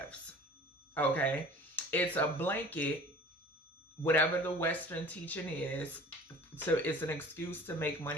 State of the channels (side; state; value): both; normal; correlation 0.44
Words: okay? It's a blanket, whatever the Western teaching is, so it's an excuse to make